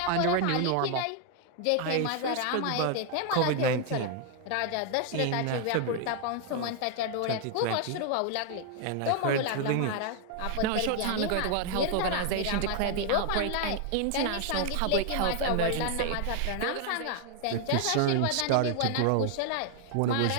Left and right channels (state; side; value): different; both; correlation 0.00